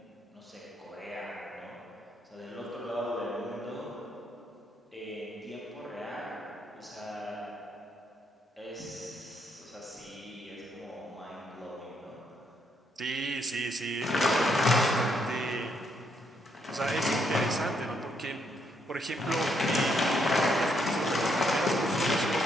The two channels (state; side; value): normal; both; correlation 0.75